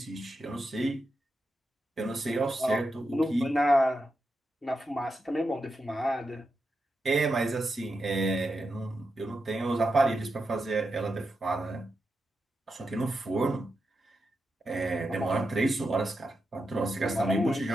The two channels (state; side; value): normal; both; correlation 0.87